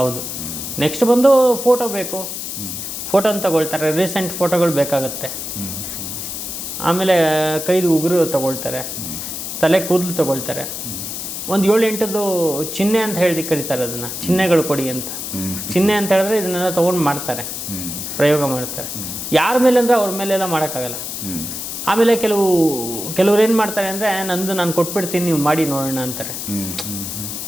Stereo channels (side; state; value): left; noise; hiss, 6 dB below the sound